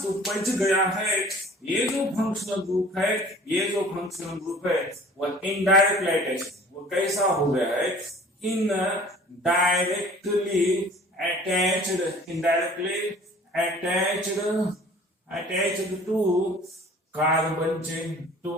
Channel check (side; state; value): both; normal; correlation 0.48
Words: तो बच गया है ये जो फंक्शनल ग्रुप है, ये जो फंक्शनल ग्रुप है वो इनडायरेक्टली अटैच। वो कैसा हो गया है, indirectly attached to carbon chain, to